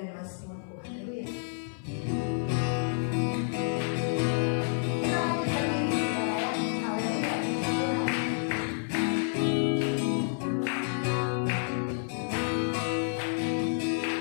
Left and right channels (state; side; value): silent; right; 58 dB below the other